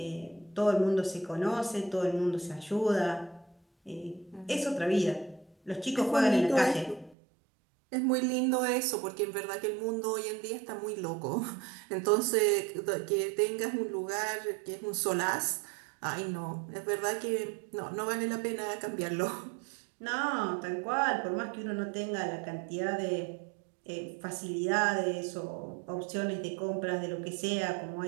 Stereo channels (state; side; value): drops out; left; at 7.2 s